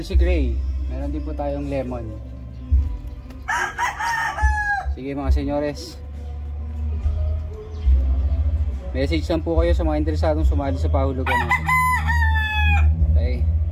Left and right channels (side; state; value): both; identical; correlation 1.00